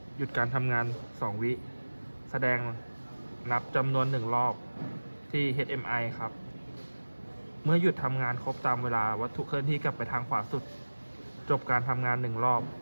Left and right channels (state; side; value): inverted; both; correlation -1.00